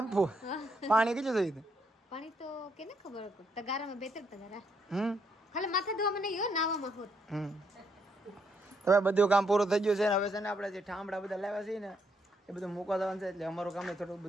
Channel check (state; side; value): normal; both; correlation 0.75